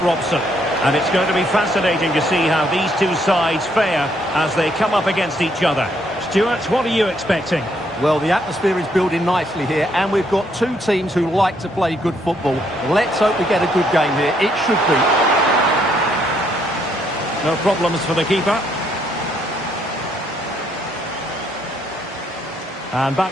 Robson. And it's going to be fascinating to see how these two sides fare as they come up against each other. Stuart, what are you expecting? Well, the atmosphere is building nicely here, and we've got two teams who like to play good football. Let's hope we get a good game here. It should be. No problems for the keeper. And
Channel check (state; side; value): normal; both; correlation 0.71